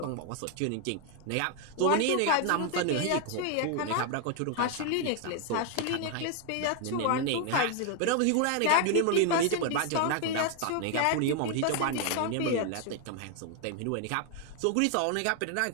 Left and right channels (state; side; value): different; both; correlation 0.00